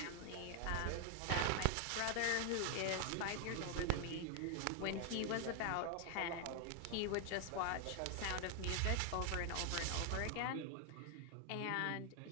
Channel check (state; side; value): different; both; correlation 0.00